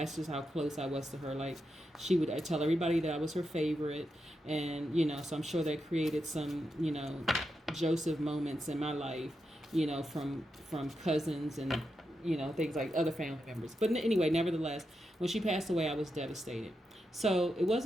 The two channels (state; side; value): normal; both; correlation 0.86